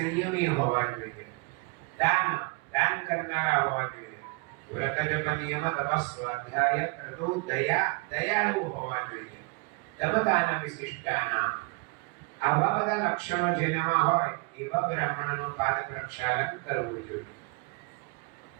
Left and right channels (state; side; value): quieter; left; 29.1 dB